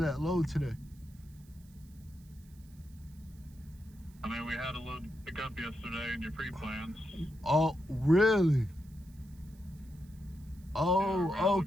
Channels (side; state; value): right; noise; hiss, 28 dB below the sound